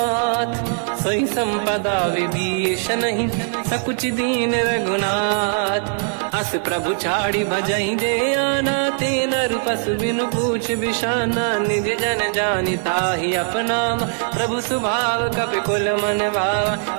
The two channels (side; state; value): left; silent; 65 dB below the other